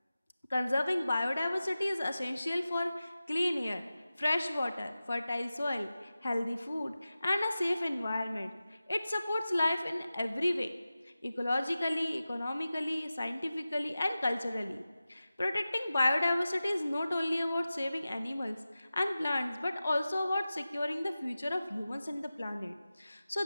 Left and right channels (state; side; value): inverted; both; correlation -0.95